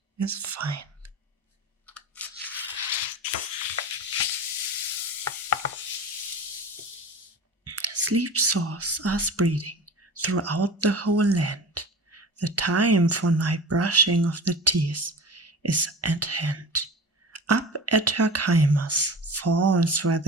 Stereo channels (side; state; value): both; normal; correlation 0.33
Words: is fine. Sleep sores are spreading throughout the whole land. The time for night brushing of the teeth is at hand. Up at Herkheimer's falls where